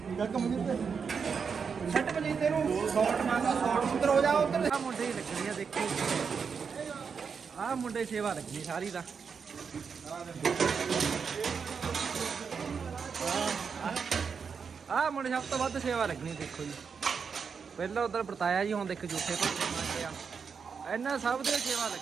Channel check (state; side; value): quieter; left; 6.0 dB